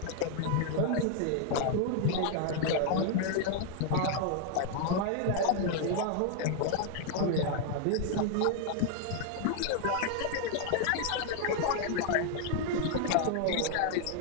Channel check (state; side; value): different; both; correlation 0.00